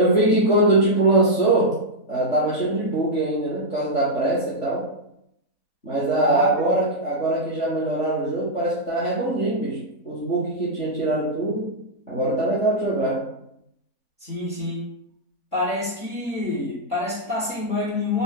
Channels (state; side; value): late; right; 3.7 ms